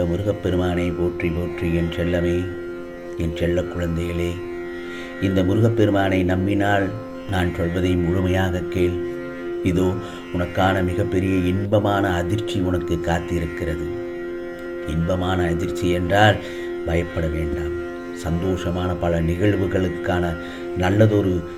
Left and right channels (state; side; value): identical; both; correlation 1.00